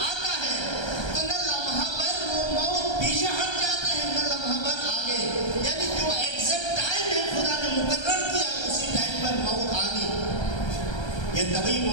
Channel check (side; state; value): right; late; 1.3 ms